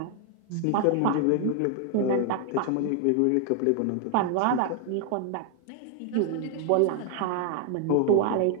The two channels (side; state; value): both; different; correlation 0.00